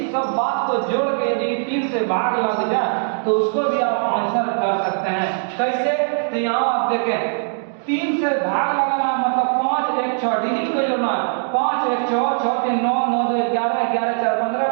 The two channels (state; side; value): silent; left; digital silence